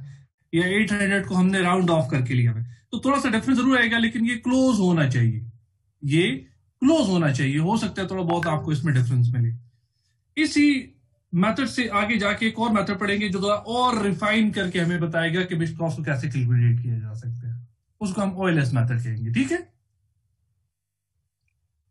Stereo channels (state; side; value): identical; both; correlation 1.00